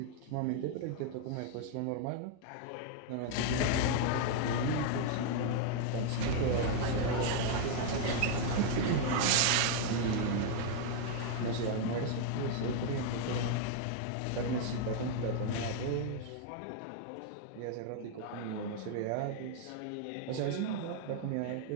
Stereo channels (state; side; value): different; both; correlation 0.00